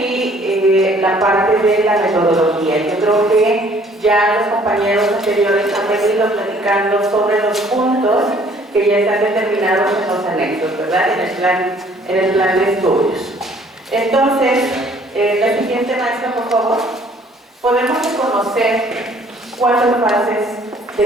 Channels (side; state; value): both; normal; correlation 0.58